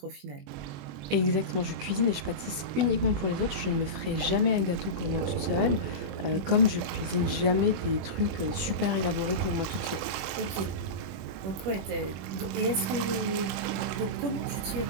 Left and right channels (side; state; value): left; late; 21 ms